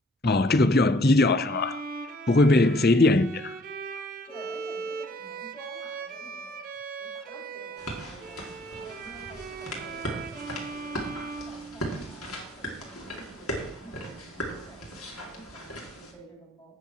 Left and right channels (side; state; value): both; normal; correlation 0.59